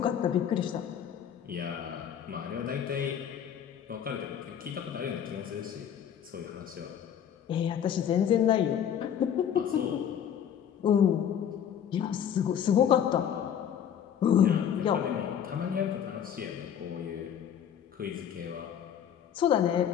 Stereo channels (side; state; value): right; quieter; 9.0 dB